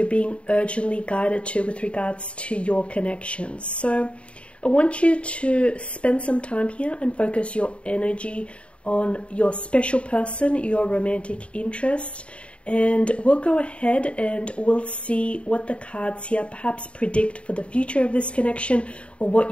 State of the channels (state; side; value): late; right; 0.060 ms